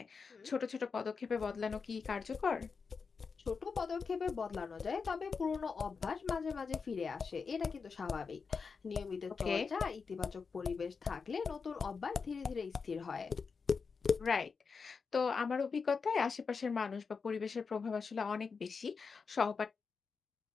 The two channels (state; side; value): quieter; right; 5.2 dB